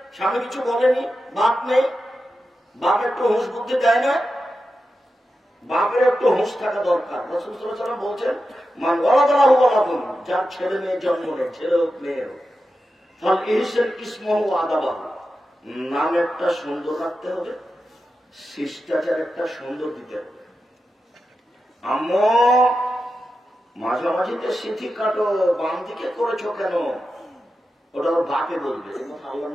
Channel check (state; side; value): normal; both; correlation 0.90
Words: স্বামী কিছু বলেনি, বাপ নেই, বাপ একটু হুঁশ বুদ্ধি দেয় না। বাপের একটু হুঁশ থাকা দরকার। রাসূল সাল্লাল্লাহু আলাইহি ওয়াসাল্লাম বলছেন, মান ওয়ালাদাহু ওয়ালাদুন, যার ছেলে মেয়ে জন্ম নেয়, ছেলে হোক মেয়ে হোক, ফাল ইহসান ইসমহু ওয়া আদাবাহু, নাম একটা সুন্দর রাখতে হবে, শিষ্টাচার একটা সুন্দর দিতে হবে। আম্মু মাঝামাঝিতে সিথি কাটো, বাম দিকে করেছো কেন? ওটা ওর বাপে বলবে। আল্লাহ